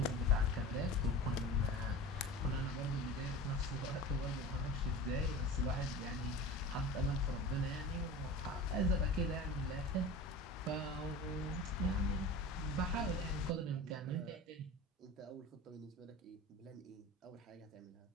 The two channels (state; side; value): normal; both; correlation 0.34